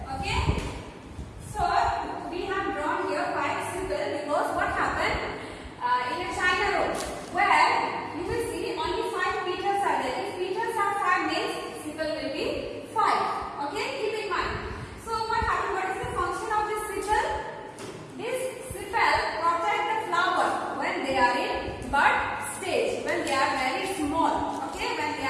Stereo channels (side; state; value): both; identical; correlation 1.00